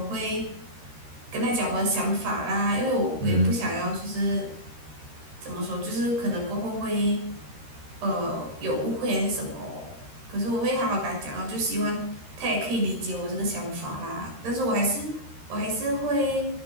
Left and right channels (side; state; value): left; late; 13 ms